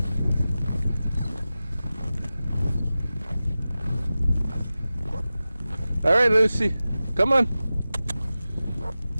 All right, Lucy, come on.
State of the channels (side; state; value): both; inverted; correlation -0.95